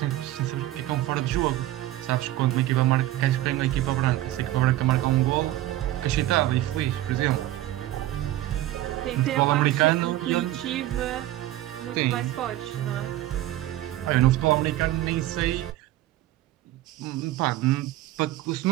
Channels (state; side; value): quieter; left; 14.8 dB